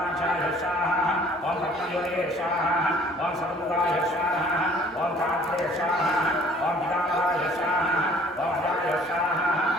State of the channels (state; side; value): normal; both; correlation 0.54